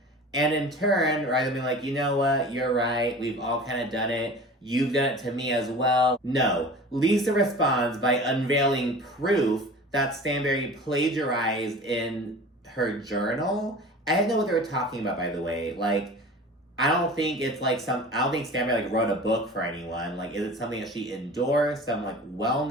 And in turn, rather than being like, you know what, you're right, we've all kind of done it, you've done it to me as well. No, Lisa responds by unveiling proof that Stanberry plagiarized in her journal. I didn't know what they were talking about, by the way. Like, I don't think it's like I don't think Stanberry, like, wrote a book for anyone. Like, is it something that she endorsed? Some, like,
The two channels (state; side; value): normal; both; correlation 0.39